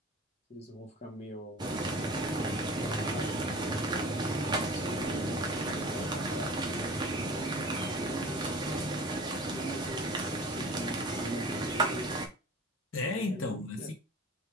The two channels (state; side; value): normal; both; correlation 0.39